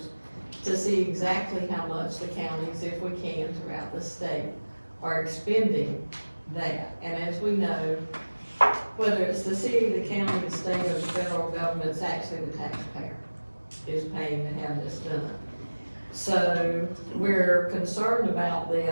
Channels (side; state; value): both; inverted; correlation -1.00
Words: to see exactly how much the counties, if we can, throughout the state are expending that. And as we know, whether it's the city, the county, the state, or the federal government, it's actually the taxpayer is paying to have this done. So we're concerned about